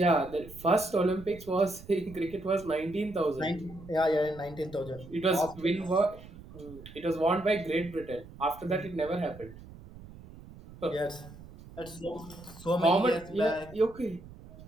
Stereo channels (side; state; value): right; noise; rumble, 18 dB below the sound